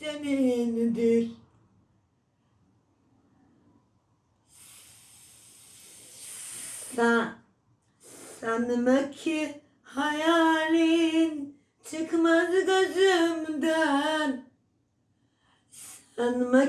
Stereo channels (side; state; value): both; identical; correlation 1.00